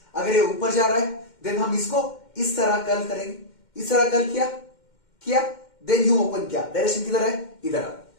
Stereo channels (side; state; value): right; late; 2.1 ms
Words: अगर ये ऊपर जा रहा है देन हम इसको इस तरह कर्ल करेंगे, इस तरह कर्ल किया किया देन यू ओपन किया, डायरेक्शन किधर है, इधर आ,